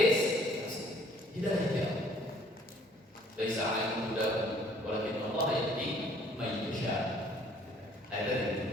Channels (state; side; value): normal; both; correlation 0.59